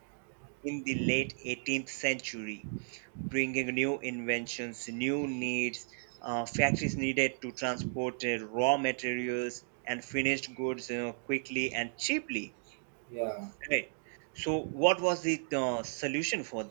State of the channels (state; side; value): silent; left; digital silence